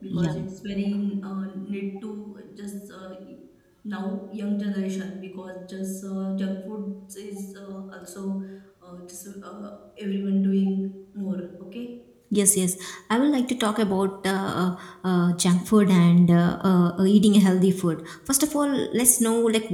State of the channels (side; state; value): both; identical; correlation 1.00